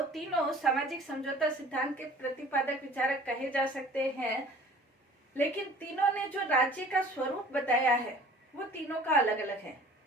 तीनों सामाजिक समझौता सिद्धांत के प्रतिपादक विचारक कहे जा सकते हैं, लेकिन तीनों ने जो राज्य का स्वरूप बताया है वो तीनों का अलग अलग है।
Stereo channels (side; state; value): both; normal; correlation 0.48